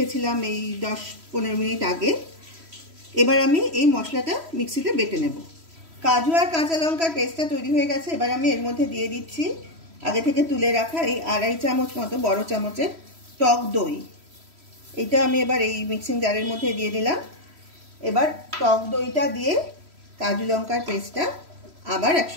এই 10-15 মিনিট আগে। এবার আমি এই মশলাটা মিক্সিতে বেটে নেব। কাজু আর কাঁচা লঙ্কার পেস্টটা তৈরি হয়ে গেছে। এবার আমি এর মধ্যে দিয়ে দিচ্ছি আগে থেকে তুলে রাখা এই 2.5 চামচ মতো বড় চামচের টক দই। এটা আমি এবার এই মিক্সিং জারের মধ্যে দিয়ে দিলাম। এবার টক দইটা দিয়ে কাজু লঙ্কার পেস্টটা আবার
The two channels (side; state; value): left; late; 3.1 ms